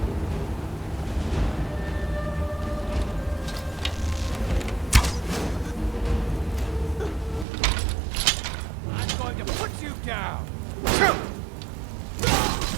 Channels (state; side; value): drops out; left; at 7.5 s